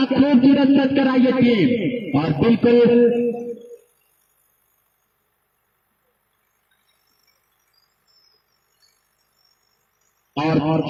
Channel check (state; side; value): identical; both; correlation 1.00